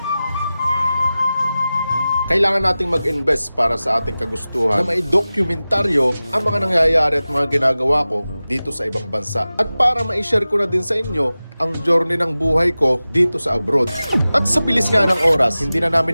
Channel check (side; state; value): both; inverted; correlation -0.96